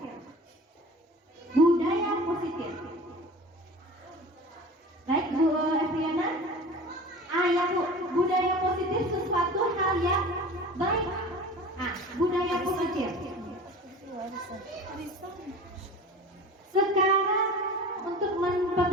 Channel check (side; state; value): both; normal; correlation 0.38